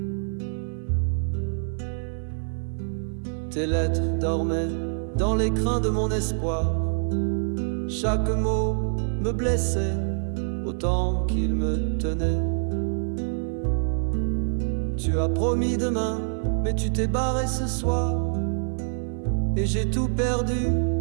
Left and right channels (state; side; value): silent; left; digital silence